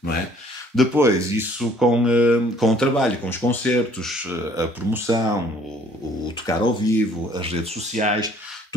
não é? Depois, isso com o trabalho, com os concertos, a promoção, o tocar ao vivo, as redes sociais,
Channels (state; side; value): normal; both; correlation 0.59